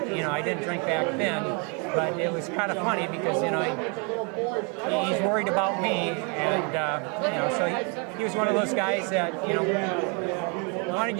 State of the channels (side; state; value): left; quieter; 34.9 dB